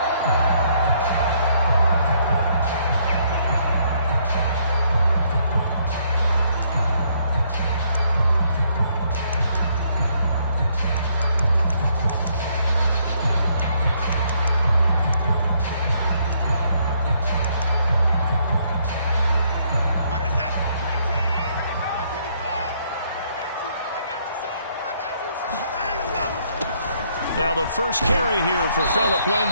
Now the first carry here for Phillip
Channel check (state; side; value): inverted; both; correlation -0.70